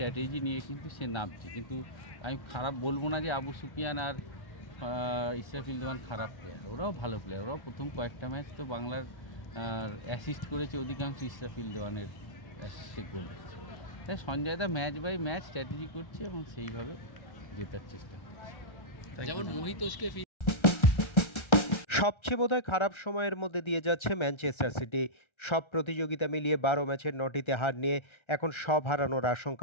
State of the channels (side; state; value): right; late; 1.3 ms